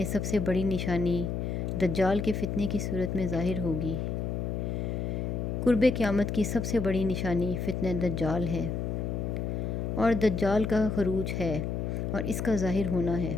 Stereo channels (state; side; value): noise; left; hum, 2 dB below the sound